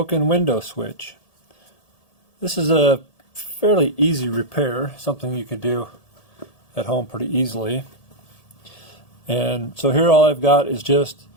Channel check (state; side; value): late; right; 1.7 ms